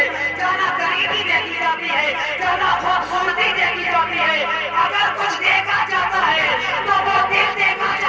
जाना गरीबी देखी जाती है, जाना खूबसूरती देखी जाती है। अगर कुछ देखा जाता है तो वो दिल देखा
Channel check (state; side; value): identical; both; correlation 1.00